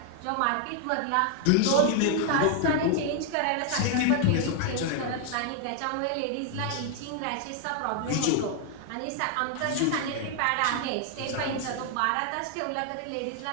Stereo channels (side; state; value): both; different; correlation 0.00